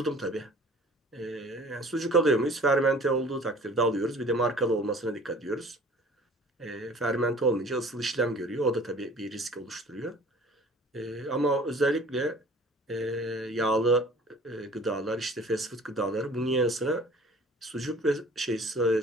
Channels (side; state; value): both; normal; correlation 0.49